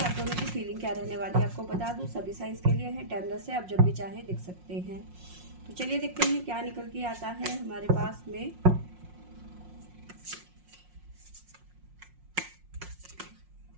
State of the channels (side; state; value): left; late; 5.6 ms